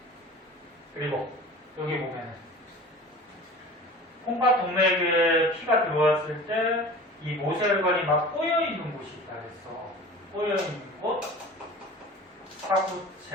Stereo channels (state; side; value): normal; both; correlation 0.39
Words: 그리고 여기 보면은 콩팥 동맥에 피가 들어왔을 때 이 모세혈관이 막 꼬여있는 곳이 있다 그랬어. 꼬여있는 곳,